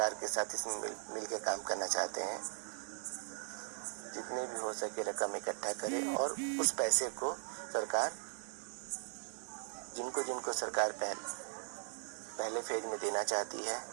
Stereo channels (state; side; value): silent; left; digital silence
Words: के साथ इसमें मिल के काम करना चाहते हैं, जितने भी हो सके रकम इकट्ठा करे और उस पैसे को सरकार जिनको सरकार पहले फेज में देना चाहती है